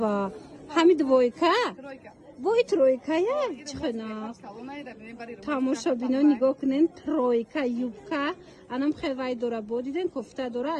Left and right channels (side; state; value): both; identical; correlation 1.00